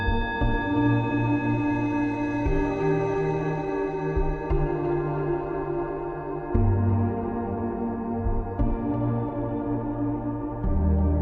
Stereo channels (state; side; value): identical; both; correlation 1.00